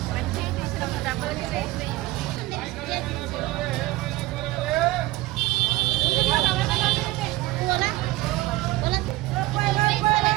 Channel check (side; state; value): left; quieter; 18.6 dB